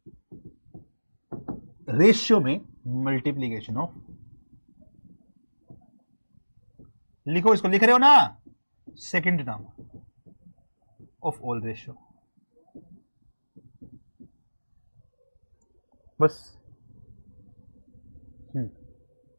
ratio में मल्टीप्लीकेशन ऑफ, लिखो इसको, लिख रहे हो ना, second term of all ratio, बस।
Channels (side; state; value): both; inverted; correlation -1.00